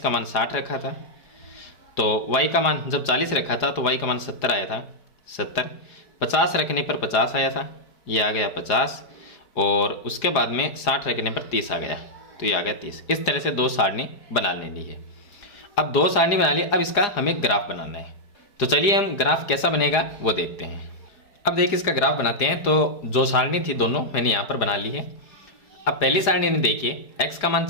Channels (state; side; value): late; right; 4.9 ms